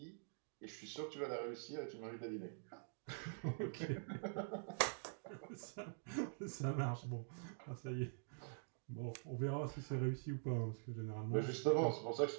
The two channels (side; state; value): left; silent; digital silence